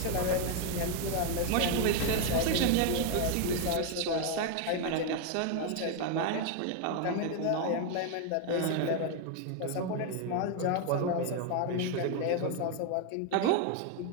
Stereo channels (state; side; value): different; both; correlation 0.01